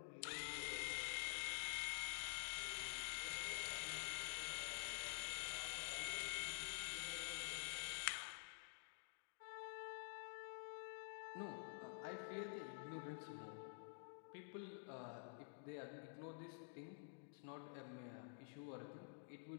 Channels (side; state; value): right; silent; digital silence